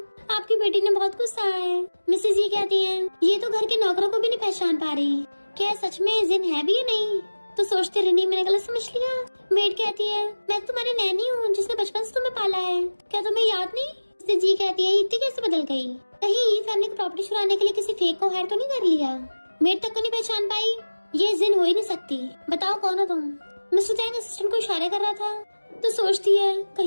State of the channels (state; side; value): inverted; both; correlation -1.00